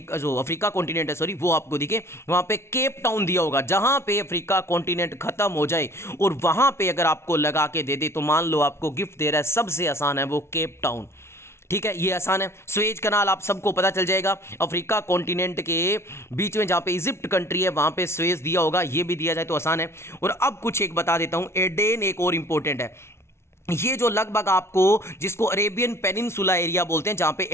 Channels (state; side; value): late; right; 0.13 ms